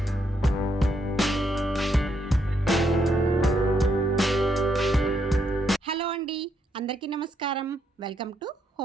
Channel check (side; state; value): both; normal; correlation 0.76